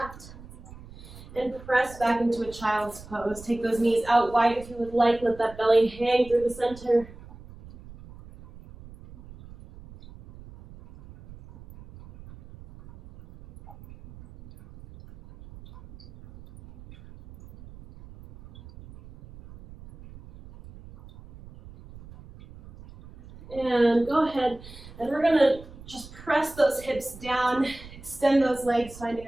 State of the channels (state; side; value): noise; right; rumble, 18 dB below the sound